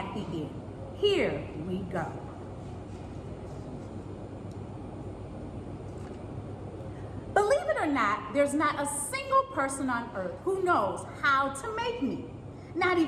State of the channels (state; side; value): identical; both; correlation 1.00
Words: the end. Here we go. Believe it or not, there's not a single person on earth who knows how to make meat. Not